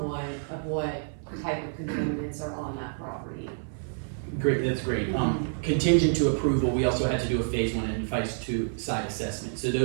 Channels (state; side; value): silent; left; 59 dB below the other